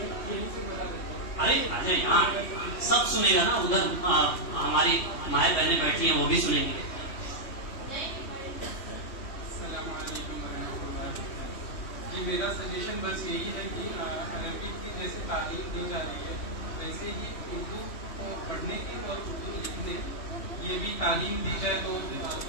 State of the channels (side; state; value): right; late; 3.1 ms